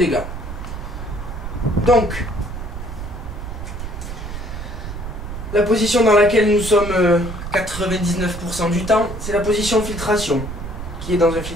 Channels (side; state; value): right; noise; rumble, 8 dB below the sound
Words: Donc, la position dans laquelle nous sommes 99% du temps, c'est la position filtration, qui est dans un